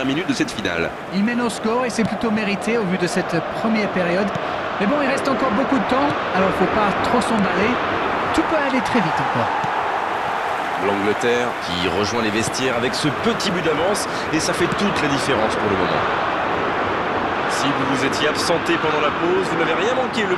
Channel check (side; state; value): both; identical; correlation 1.00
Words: minutes de cette finale? Il mène au score et c'est plutôt mérité au vu de cette première période. Mais bon, il reste encore beaucoup de temps, alors il ne faut pas trop s'emballer. Tout peut aller très vite encore. L'Angleterre qui rejoint les vestiaires avec ce petit but d'avance et ça fait toute la différence pour le moment. Si vous vous étiez absenté pendant la pause, vous n'avez rien manqué, le